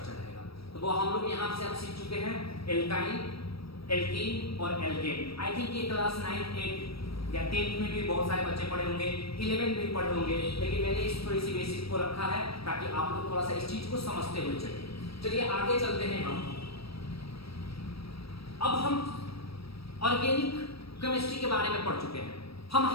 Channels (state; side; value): late; right; 0.76 ms